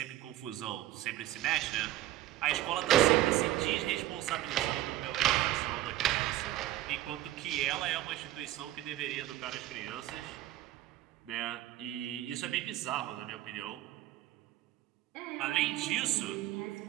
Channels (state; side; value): quieter; left; 14.5 dB